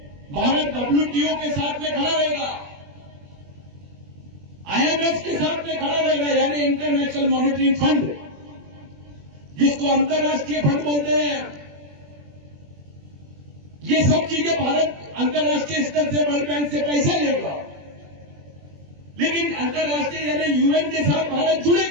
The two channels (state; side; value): late; left; 21 ms